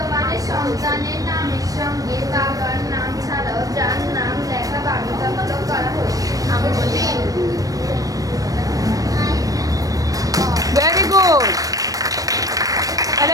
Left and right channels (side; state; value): left; late; 0.17 ms